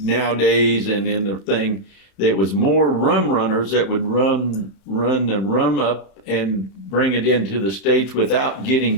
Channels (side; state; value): right; late; 31 ms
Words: and in the thing. There was more rum runners that would run the rum up and bring it into the States without